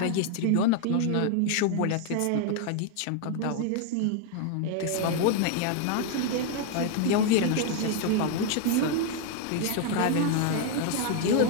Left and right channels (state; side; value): different; both; correlation 0.00